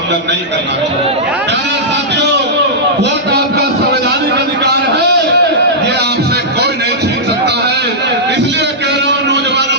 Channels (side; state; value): both; normal; correlation -0.12